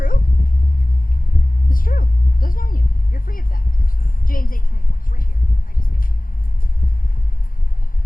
It's true. It doesn't own you. You're free of that. James 8:24. It's right here. I just missed it.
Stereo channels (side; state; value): right; late; 0.41 ms